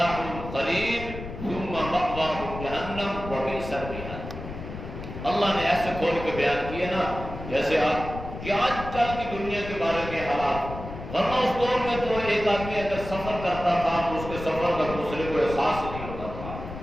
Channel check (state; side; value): noise; left; rumble, 10 dB below the sound